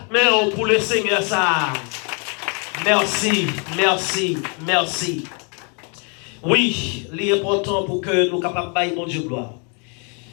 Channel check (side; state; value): right; quieter; 37.1 dB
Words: pour le Seigneur ça. Merci, merci, merci. Oui, l'important pour que nous capables de bailler mon Dieu gloire.